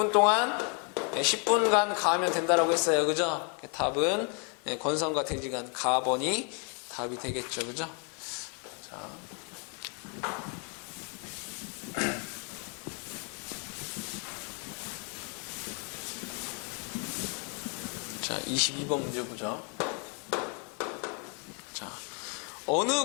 동안? 10분간 가하면 된다라고 했어요. 그죠? 답은 건선과 대지 간 가번이 답이 되겠죠. 그죠? 자. 자, 22번 문제 보죠. 자, 어느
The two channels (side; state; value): right; quieter; 38.0 dB